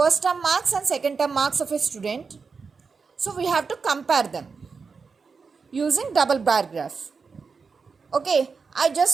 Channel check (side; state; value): left; quieter; 5.1 dB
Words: term marks and second term marks of a student. So we have to compare them using double bar graph. Okay, I